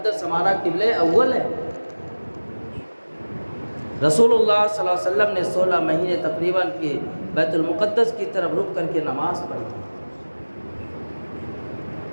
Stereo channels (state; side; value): inverted; both; correlation -1.00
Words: ہمارا قبلہ اول ہے۔ رسول اللہ صلی اللہ علیہ وسلم نے 16 مہینے تقریباً کہ بیت المقدس کی طرف رک کر کے نماز پڑھی۔